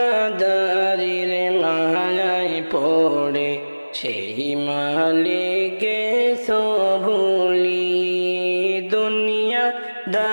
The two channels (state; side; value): inverted; both; correlation -1.00